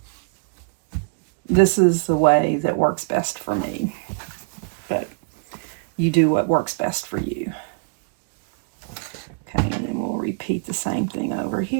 this is the way that works best for me. But you do what works best for you. Okay, and then we'll repeat the same thing over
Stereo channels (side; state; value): left; quieter; 37.8 dB